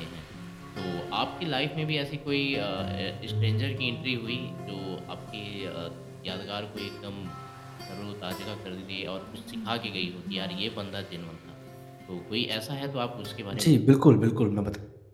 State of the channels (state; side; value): identical; both; correlation 1.00